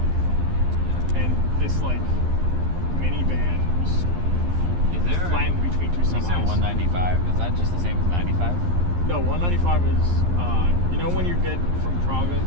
And this like minivan was Is there? flattened between 2 You said semis. 195. Is that just the same as 95? No, 195 is when you get from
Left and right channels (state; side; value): late; left; 11 ms